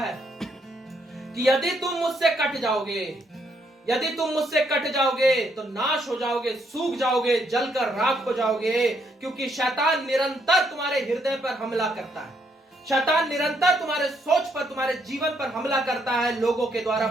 कि यदि तुम मुझसे कट जाओगे, यदि तुम मुझसे कट जाओगे तो नाश हो जाओगे, सूख जाओगे, जलकर राख हो जाओगे। क्योंकि शैतान निरंतर तुम्हारे हृदय पर हमला करता है। शैतान निरंतर तुम्हारे सोच पर, तुम्हारे जीवन पर हमला करता है, लोगों के द्वारा,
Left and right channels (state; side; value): normal; both; correlation 0.73